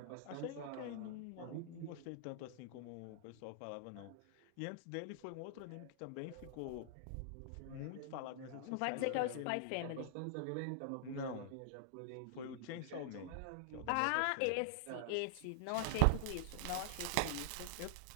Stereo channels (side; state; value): both; different; correlation -0.01